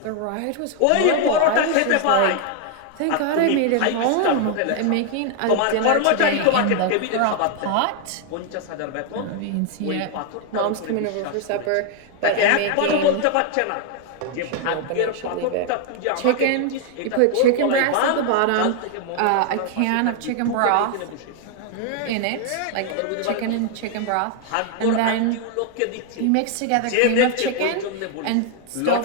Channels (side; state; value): both; different; correlation 0.00